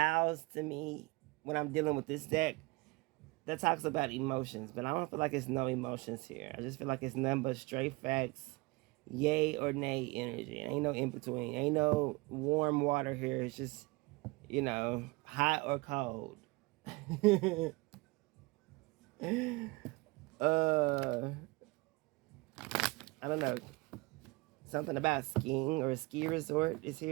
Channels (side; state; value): left; quieter; 24.7 dB